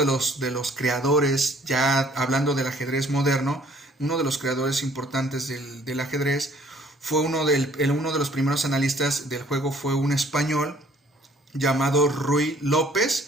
los creadores, ya hablando del ajedrez moderno, uno de los creadores importantes del ajedrez, fue uno de los primeros analistas del juego, fue un español llamado Ruy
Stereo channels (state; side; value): normal; both; correlation 0.59